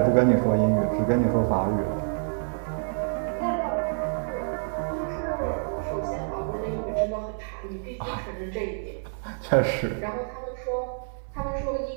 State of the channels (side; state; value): left; silent; digital silence